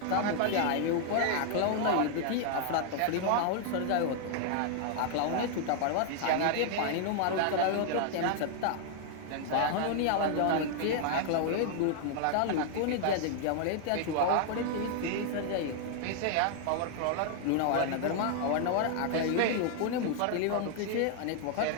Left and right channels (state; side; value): different; both; correlation 0.00